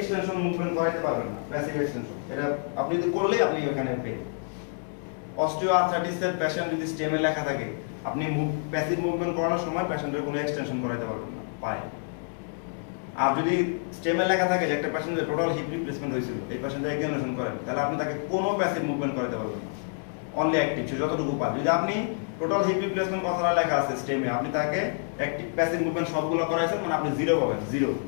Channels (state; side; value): silent; right; 60 dB below the other